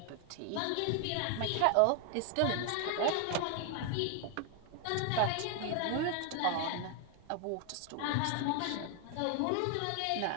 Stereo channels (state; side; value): different; both; correlation 0.00